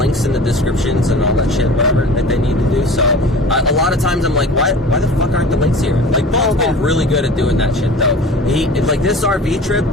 in the descriptions and all that shit, whatever, that they need to do. So, a lot of times I'm like, why the fuck aren't the links here? Like, Bone's been really good at doing that shit, though. This RV trip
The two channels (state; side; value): normal; both; correlation 0.40